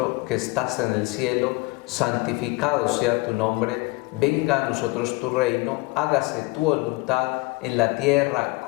que estás en el cielo, santificado sea tu nombre, venga a nosotros tu reino, hágase tu voluntad en la tierra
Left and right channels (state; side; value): quieter; right; 23.9 dB